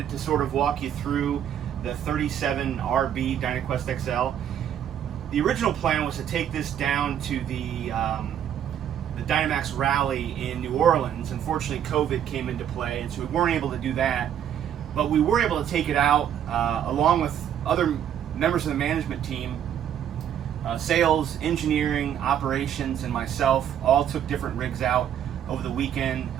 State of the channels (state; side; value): quieter; left; 9.7 dB